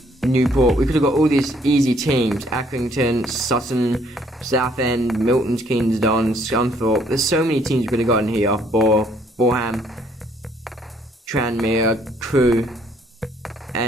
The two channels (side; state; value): both; normal; correlation 0.65